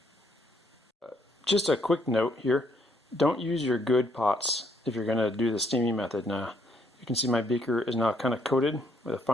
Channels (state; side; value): normal; both; correlation 0.70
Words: Just a quick note here, don't use your good pots if you're going to do the steaming method. Now, you can see my beaker is now kind of coated with a